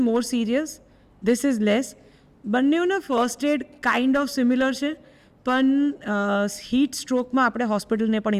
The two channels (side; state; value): both; identical; correlation 1.00